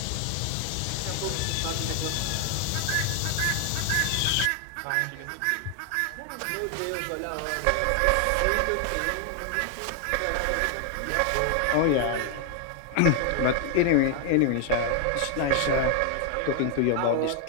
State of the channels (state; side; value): different; both; correlation 0.00